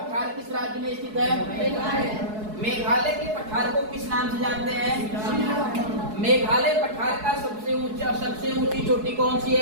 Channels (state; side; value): late; left; 4.7 ms